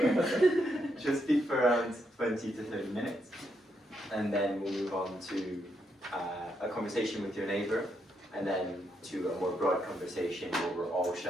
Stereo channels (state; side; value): normal; both; correlation 0.79